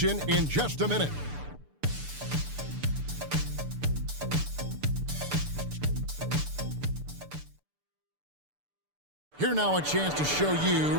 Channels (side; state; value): left; late; 6.8 ms